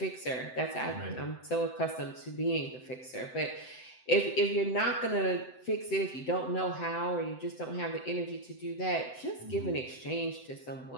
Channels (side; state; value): right; late; 7.8 ms